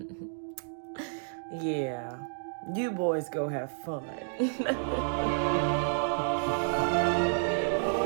Yeah. You boys go have fun.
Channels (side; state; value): left; silent; digital silence